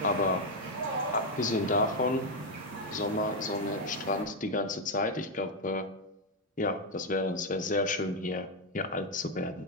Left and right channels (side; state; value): both; normal; correlation 0.03